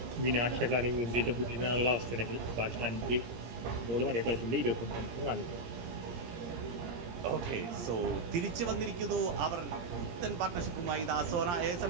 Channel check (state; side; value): late; left; 17 ms